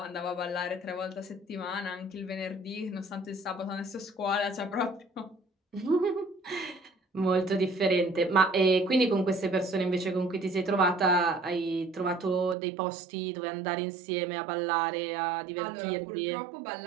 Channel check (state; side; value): drops out; left; at 12.6 s